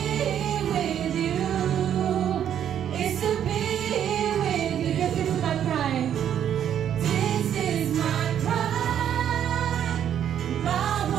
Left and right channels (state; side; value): quieter; left; 9.7 dB